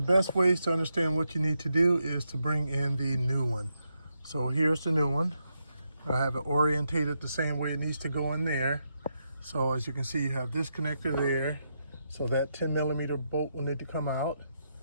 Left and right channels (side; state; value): both; inverted; correlation -0.83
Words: the best ways to understand what you need to do is to bring in the new one. So here's the new one. I have it orientated the same way it needs to go in there. So as you can see, you have this connector there. So that 10mm bolt will need to come out.